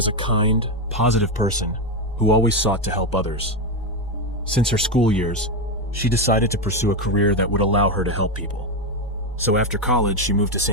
a kind, positive person who always sought to help others. Since her school years, she decided to pursue a career that would allow her to help people. So after college, she moved to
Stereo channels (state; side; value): normal; both; correlation 0.08